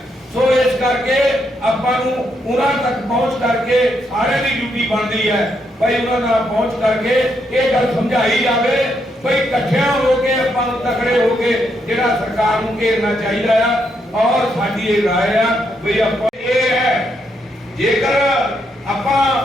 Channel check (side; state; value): both; normal; correlation 0.78